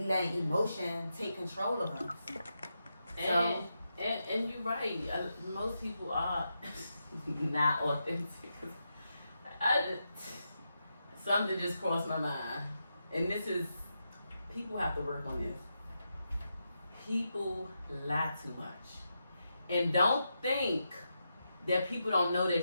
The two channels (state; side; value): inverted; both; correlation -0.86